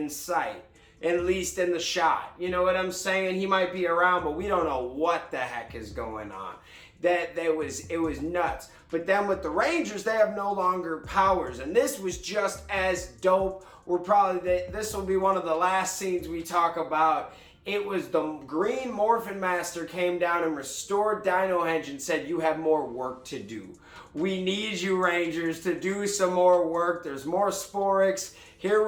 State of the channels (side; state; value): both; identical; correlation 1.00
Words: sight, at least in the shot. You know what I'm saying? He might be around, but we don't know what the heck is going on. It was nuts. But then with the Rangers, they have no longer powers, and this was just as dope. This will be one of the last scenes we talk about. It was the Green Morphin Master came down and restored Dino Henge and said, you have more work to do. We need you, Rangers, to do some more work. There's more Sporix. Here